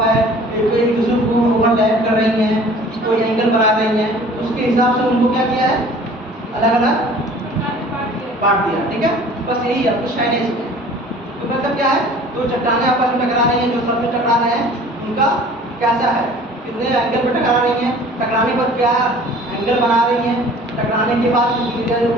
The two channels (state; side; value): normal; both; correlation 0.48